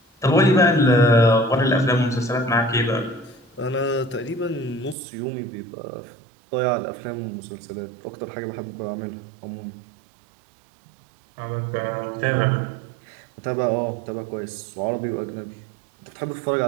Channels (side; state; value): left; drops out; at 5.0 s